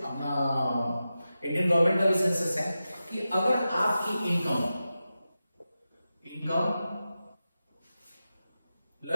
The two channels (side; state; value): both; inverted; correlation -0.92